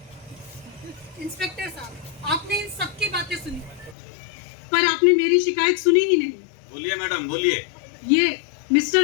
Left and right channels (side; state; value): right; drops out; at 4.0 s